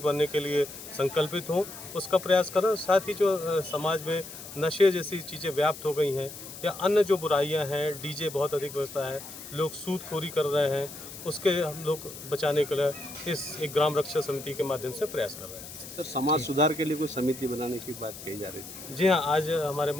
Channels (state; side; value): noise; left; hiss, 13 dB below the sound